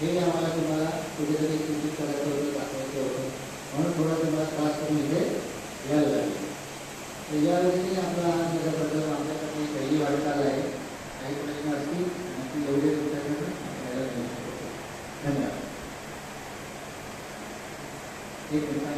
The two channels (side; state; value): both; identical; correlation 1.00